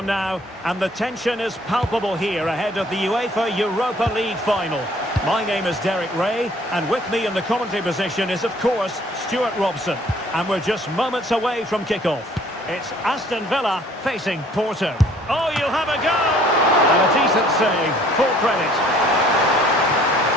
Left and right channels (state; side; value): normal; both; correlation 0.57